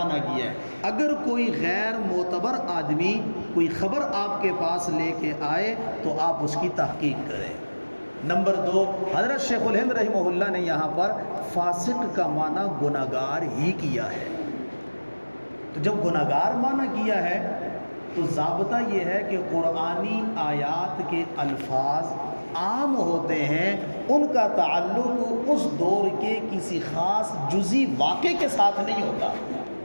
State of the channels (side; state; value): both; inverted; correlation -1.00